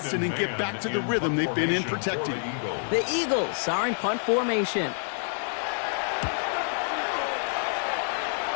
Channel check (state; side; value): silent; right; 60 dB below the other